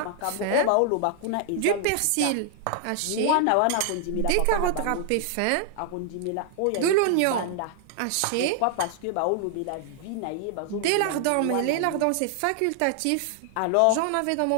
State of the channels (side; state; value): both; different; correlation 0.00